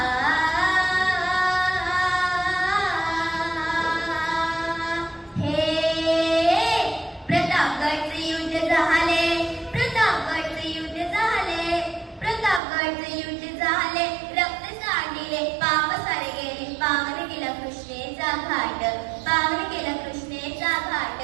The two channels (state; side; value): drops out; left; at 12.6 s